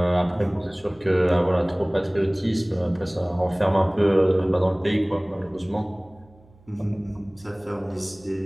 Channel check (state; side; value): noise; right; hum, 28 dB below the sound